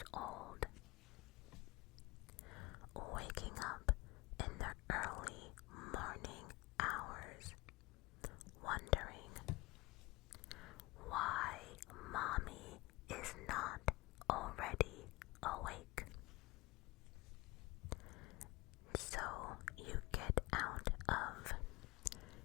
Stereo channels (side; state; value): right; quieter; 22.0 dB